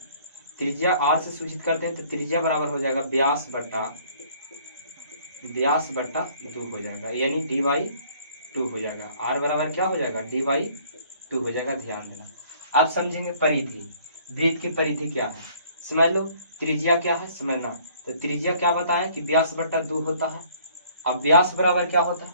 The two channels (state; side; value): inverted; both; correlation -0.58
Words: त्रिज्या r से सूचित करते हैं तो त्रिज्या बराबर हो जाएगा व्यास बट्टा 2 हो जाएगा, यानी डी/2 हो जाएगा। r बराबर क्या हो जाएगा, डी/2 हो जाएगा। ध्यान देना। अब समझेंगे परिधि। वृत्त की परिधि क्या है समझ लो। त्रिज्या क्या है समझना, तो त्रिज्या क्या बताएं कि व्यास बट्टा 2 होता है। अब व्यास बराबर क्या होता है,